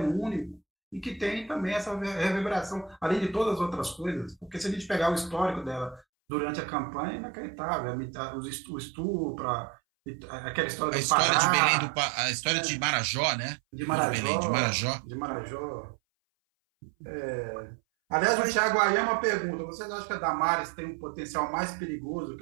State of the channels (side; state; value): left; drops out; at 6.1 s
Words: único, e que tem também essa reverberação, além de todas as outras coisas. Porque se a gente pegar o histórico dela durante a campanha, é inacreditável. O estupro, aquela história do Pará, de Belém a história de Marajó, né? De Marajó. De Marajó. Aliás, o Thiago Ayama pergunta: vocês acham que a Damares tem um potencial mais perigoso